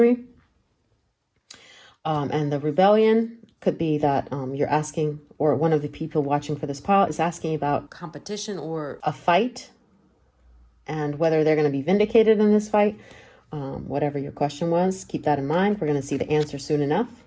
And the rebellion could be that you're asking, or one of the people watching for this pile is asking about competition or a fight and whether they're going to be vindicated in this fight. Whatever your question was, keep that in mind. We're going to see the answer soon enough.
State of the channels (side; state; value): both; identical; correlation 1.00